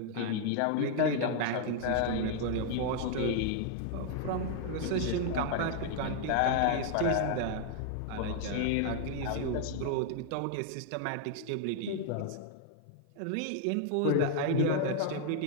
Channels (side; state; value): both; different; correlation 0.00